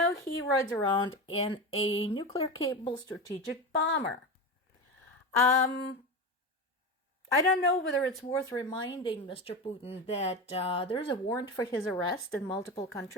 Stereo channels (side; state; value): both; normal; correlation 0.22